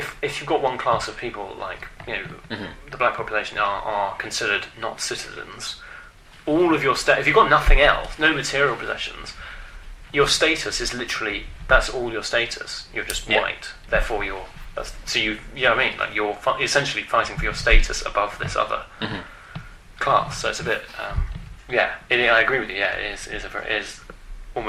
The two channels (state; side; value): identical; both; correlation 1.00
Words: you've got one class of people like the black population are considered not citizens. All of your if you've got nothing else, no material possessions, your status is literally that's all your status. You're just white, therefore you're. You know what I mean? Like you're essentially fighting for your status above this other class. So it's a bit, I agree with you. Yeah, it is